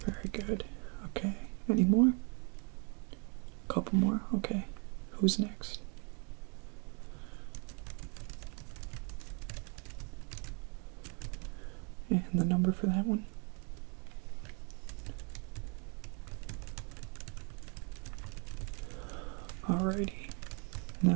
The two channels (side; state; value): left; quieter; 35.9 dB